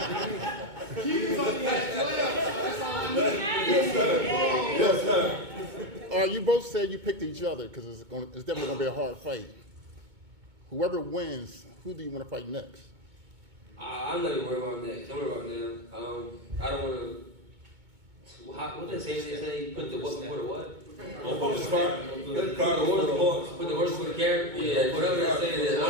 Yes, sir. You both said you picked each other because it's definitely going to be a hard fight. Whoever wins, who do you want to fight next? I'm not even worried about next. Don't worry about them. I don't want to. What they say? Put the what before the what? Put the horse before the carrot. Yeah, whatever they're saying. I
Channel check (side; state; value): left; late; 2.2 ms